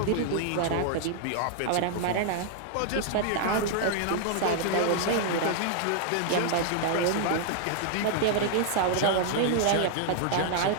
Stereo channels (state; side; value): different; both; correlation 0.00